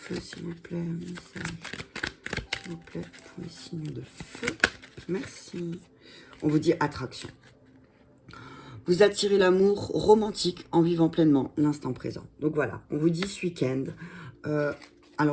s'il vous plaît, un message. S'il vous plaît, pour les signes de feu. Merci. On vous dit attraction. Vous attirez l'amour romantique en vivant pleinement l'instant présent. Donc voilà, on vous dit ce week-end.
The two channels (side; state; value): both; identical; correlation 1.00